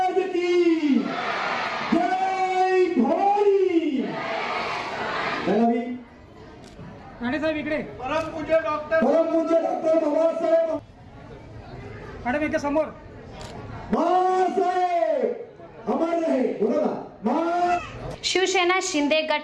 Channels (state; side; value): identical; both; correlation 1.00